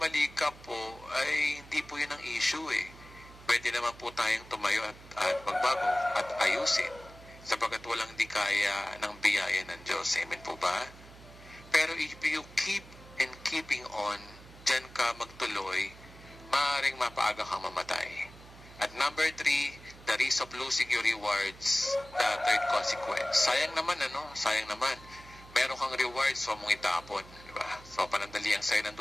ka po, ay hindi po yun ang issue Pwede naman po tayong tumayo at magbago at ayusin sapagkat walang di kaya ng biyaya ng Diyos. Amen po ba? Pero if you keep and keeping on, dyan ka magtuloy, maaaring mapaaga kang mamatay. At number 3, the risk of losing your rewards, the third consequence. Sayang naman, Sayang naman. Meron kang rewards, so mong itapon. Diba? So, panandali ang sa'yo ng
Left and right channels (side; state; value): right; noise; hum, 19 dB below the sound